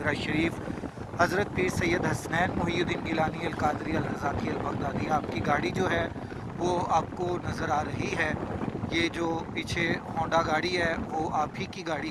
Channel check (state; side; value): identical; both; correlation 1.00